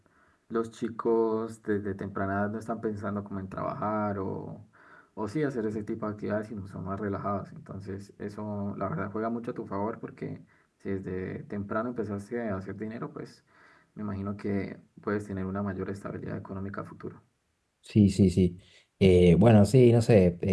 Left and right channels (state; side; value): identical; both; correlation 1.00